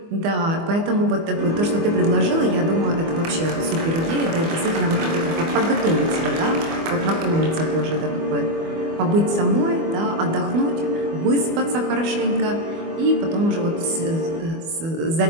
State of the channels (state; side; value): late; left; 24 ms